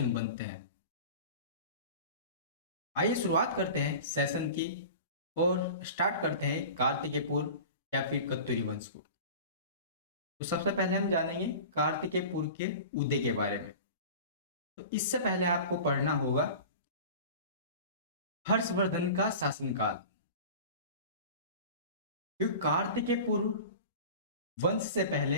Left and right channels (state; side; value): inverted; both; correlation -0.36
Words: बनते हैं। आइए शुरुआत करते हैं सेशन की और स्टार्ट करते हैं कार्तिकेयपुर या फिर कत्यूरी वंश को। तो सबसे पहले हम जानेंगे कार्तिकेयपुर के उदय के बारे में। तो इससे पहले आपको पढ़ना होगा हर्षवर्धन का शासनकाल। क्योंकि कार्तिकेयपुर वंश से पहले